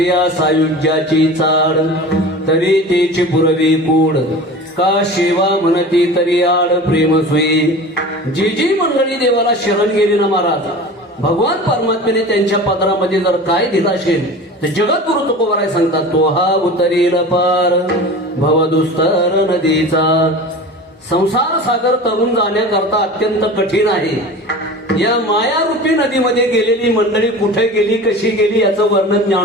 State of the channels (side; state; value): both; normal; correlation 0.36